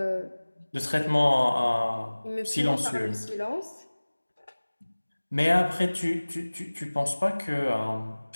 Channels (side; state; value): both; inverted; correlation -1.00